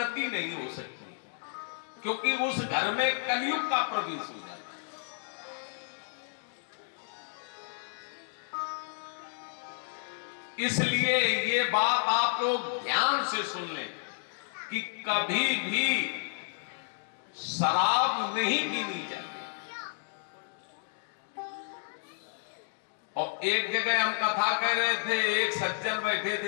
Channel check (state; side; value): silent; right; digital silence